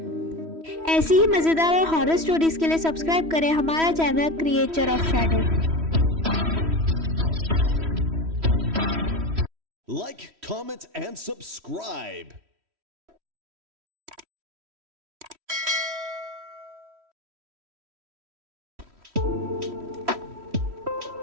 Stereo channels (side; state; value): left; late; 3.1 ms